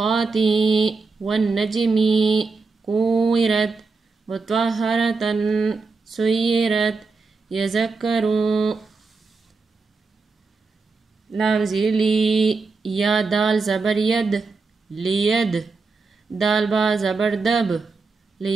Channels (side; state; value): left; quieter; 4.3 dB